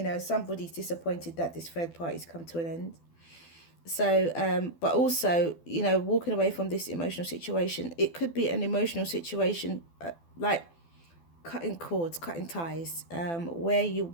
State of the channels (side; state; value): right; late; 12 ms